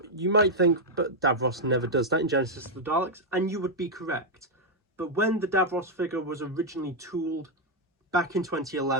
you might think, but Davros never does that in Genesis of the Daleks, and you would be correct. But when the Davros figure was originally tooled back in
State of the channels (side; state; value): both; normal; correlation -0.01